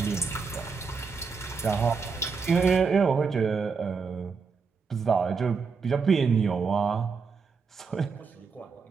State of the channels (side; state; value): left; quieter; 5.3 dB